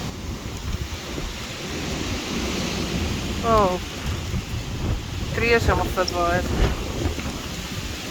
Oh, trieën is helemaal vet waard.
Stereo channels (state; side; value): identical; both; correlation 1.00